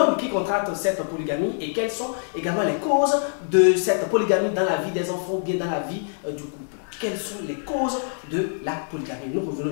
qui contracte cette polygamie et quelles sont également les causes de cette polygamie dans la vie des enfants ou bien dans la vie du couple? Quelles sont les causes de la polygamie? Nous revenons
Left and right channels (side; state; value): right; silent; digital silence